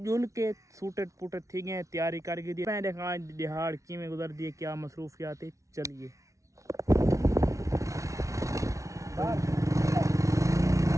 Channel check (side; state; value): left; late; 0.15 ms